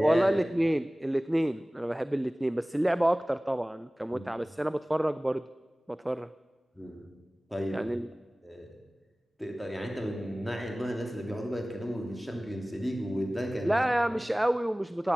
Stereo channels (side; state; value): both; normal; correlation 0.98